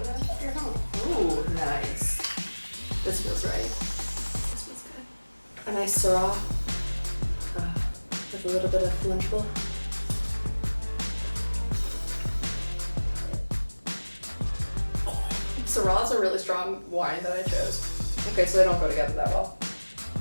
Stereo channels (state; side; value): inverted; both; correlation -1.00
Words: You're home. Ooh, nice. This feels right. This feels good. A nice Syrah with a little bit of Lunchable. Syrah is a really strong wine that I chose. Okay, so they don't go together that well.